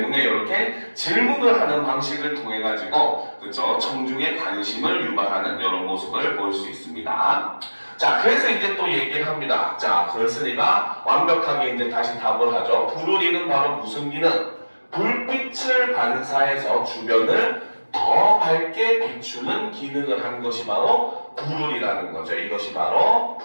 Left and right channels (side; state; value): both; inverted; correlation -1.00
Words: 이렇게 질문을 하는 방식을 통해 가지고, 그죠? 청중의 관심을 유발하는 이런 모습을 볼 수 있습니다. 자, 그래서 이제 또 얘기를 합니다. 자, 그렇으니까 완벽하게 이제 다시 답을 하죠. 부르리는 바로 무슨 기능? 불빛을 반사해서 주변을 더 밝게 비추는 기능을 한 것이 바로 부르리라는 거죠. 이것이 바로